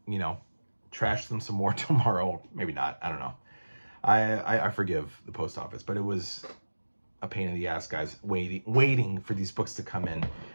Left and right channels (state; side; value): inverted; both; correlation -1.00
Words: know, trash them some more tomorrow. Maybe not. I don't know. I forgive the post office, but it was a pain in the ass, guys, waiting for these books to come in,